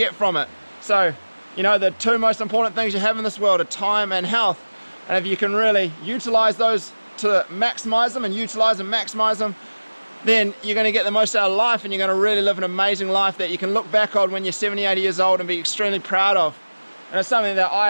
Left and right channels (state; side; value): inverted; both; correlation -1.00